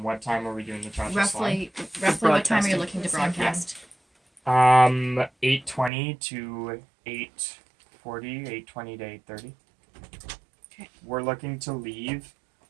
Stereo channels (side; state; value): left; drops out; at 5.9 s